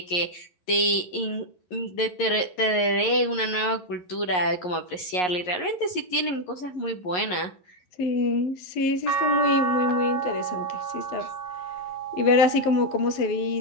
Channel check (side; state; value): right; late; 11 ms